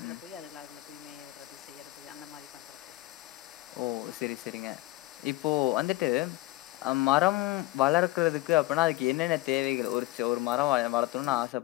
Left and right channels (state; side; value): quieter; right; 19.1 dB